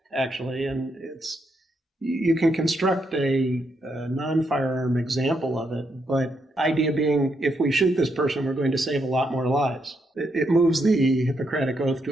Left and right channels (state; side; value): normal; both; correlation 0.79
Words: actually, and you can construct a non-firearm example of it, but idea being, if we shoot this person, we're going to save a lot more lives. It moves the Hippocratic Oath